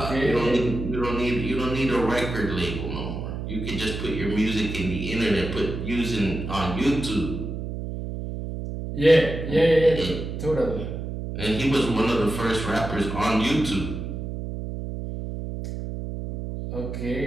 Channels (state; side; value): noise; right; hum, 6 dB below the sound